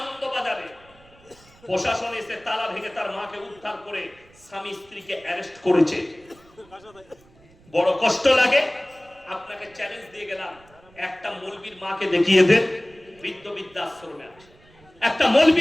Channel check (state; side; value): noise; right; rumble, 28 dB below the sound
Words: প্রশাসন এসে তালা ভেঙে তার মাকে উদ্ধার করে স্বামী স্ত্রীকে অ্যারেস্ট করেছে। বড় কষ্ট লাগে। আপনাকে চ্যালেঞ্জ দিয়ে গেলাম, একটা মৌলবীর মাকে দেখিয়ে দেন বৃদ্ধাশ্রমে আছে, একটা